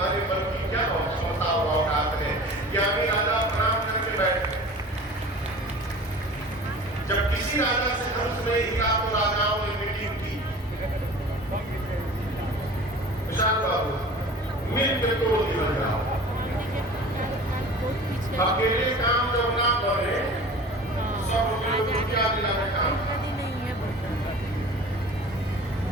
मन की क्या क्षमता और औकात है। ज्ञानी राजा प्रणाम करके बैठ गए। जब किसी राजा से धनुष में हिला तो राजाओं ने मीटिंग की, विशाल बाबू मिलकर तोड़ दिया जाओ। अकेले काम जब ना बने सब लोग क्या दिलाने काम,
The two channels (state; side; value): normal; both; correlation 0.40